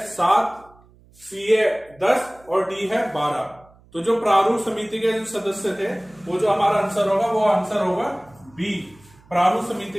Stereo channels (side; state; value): right; noise; hum, 28 dB below the sound